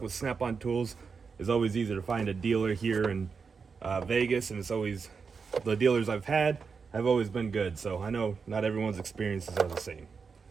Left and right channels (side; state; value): left; quieter; 5.4 dB